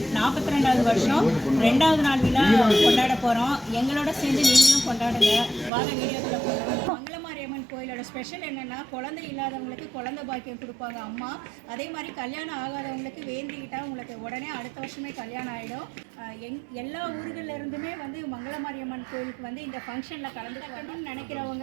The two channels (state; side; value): drops out; left; at 5.7 s